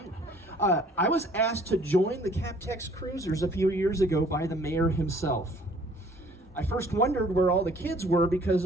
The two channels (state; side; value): normal; both; correlation 0.56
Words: I was asked to join the CapTex cruisers a few years ago by the mayor himself. I first wondered where all the kids were because